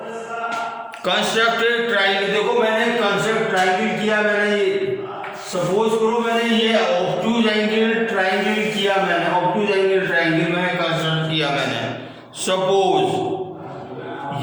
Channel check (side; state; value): both; identical; correlation 1.00